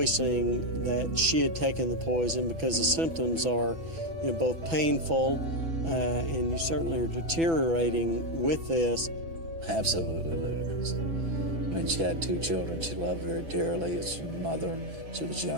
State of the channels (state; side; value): late; left; 6.1 ms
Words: that she had taken the poison, because the symptoms are, both painful and you certainly are deteriorating with this. Absolutely ludicrous. I mean, she had 2 children she loved very dearly. As a mother, she was